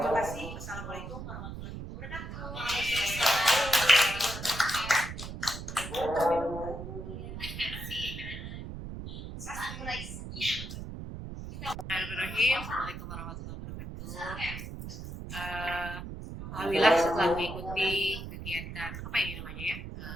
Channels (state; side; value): noise; right; rumble, 8 dB below the sound